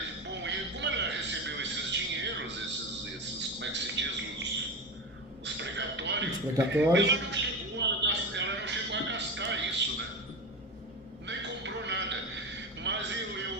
precatórios. Ela não chegou a gastar isso, né? Nem comprou nada. Mas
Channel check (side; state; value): both; normal; correlation 0.22